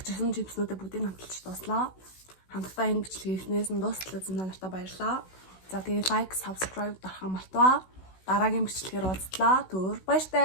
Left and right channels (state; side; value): late; right; 16 ms